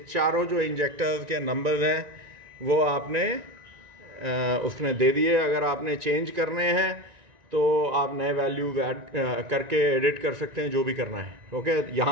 चारों जो इंजेक्टर्स के नंबर्स हैं वो आपने उसने दे दिए। अगर आपने चेंज करने हैं तो आप नए वैल्यू ऐड करके एडिट कर सकते हैं, जो भी करना है। ओके,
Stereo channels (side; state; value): left; late; 1.9 ms